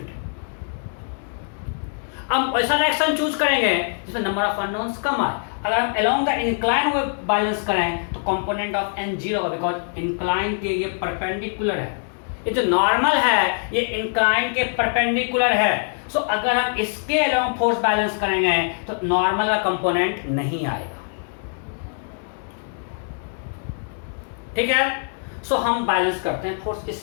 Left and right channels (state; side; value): silent; right; 63 dB below the other